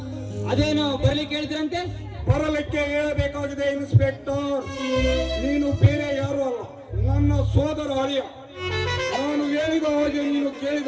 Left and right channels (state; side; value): identical; both; correlation 1.00